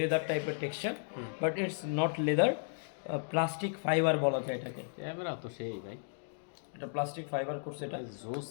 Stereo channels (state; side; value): silent; right; digital silence